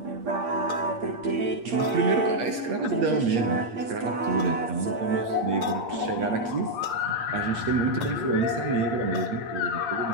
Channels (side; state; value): left; late; 8.5 ms